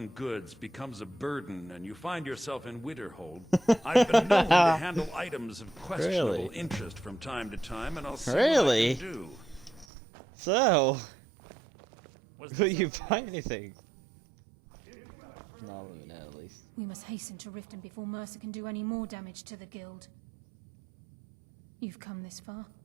goods becomes a burden and you find yourself in Winterhold, I've been known to handle items of questionable interest from time to time, and I'll see what I can do. So, Was will there you something find else? anything? If you have further need of me, you can We find must me hasten in to the Riften college. before Mercer can do any more damage to the Guild. You've come this far,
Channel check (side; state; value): left; drops out; at 9.9 s